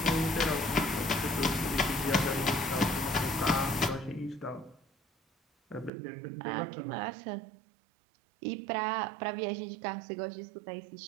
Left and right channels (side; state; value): left; drops out; at 5.9 s